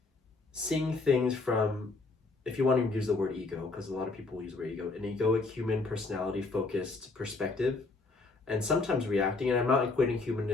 seeing things from, if you want to use the word ego, because a lot of people use the word ego, an egoic, human, personality focused perspective, and sometimes reacting, and I'm not equating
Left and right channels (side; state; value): right; quieter; 3.7 dB